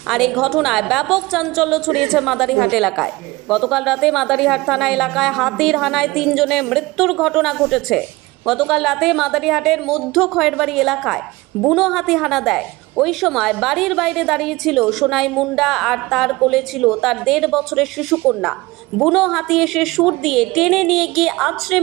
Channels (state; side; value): quieter; left; 21.4 dB